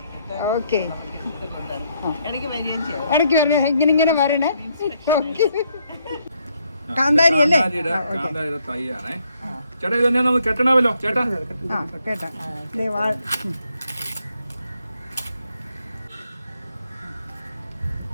ഓക്കെ, ഇടയ്ക്ക് വരണേ, ഇങ്ങനെ വരണേ. കാന്താരി അല്ലേ? ചേട്ടാ ഇത് തന്നെ നമുക്ക് കെട്ടണമല്ലോ ചേട്ടാ. കേട്ടാ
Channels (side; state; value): both; inverted; correlation -0.73